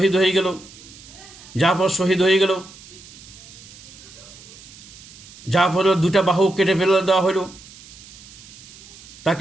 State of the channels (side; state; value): right; noise; hiss, 20 dB below the sound